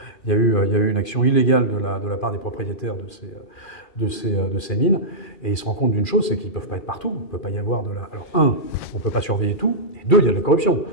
il y a eu une action illégale de la part des propriétaires de ces mines, et ils se rendent compte d'une chose, c'est qu'ils ne peuvent pas être partout, il ne peut pas y avoir Alors, un, on ne peut pas surveiller tout, et deux, il y a de la corruption.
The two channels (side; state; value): right; late; 2.4 ms